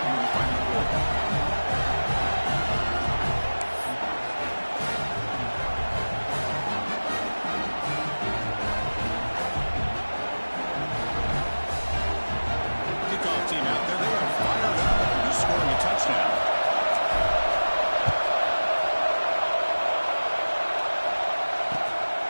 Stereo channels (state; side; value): inverted; both; correlation -1.00